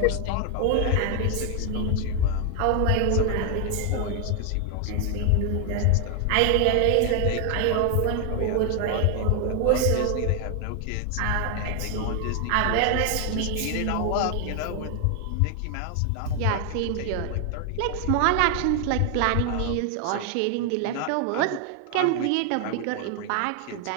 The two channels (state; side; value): different; both; correlation 0.00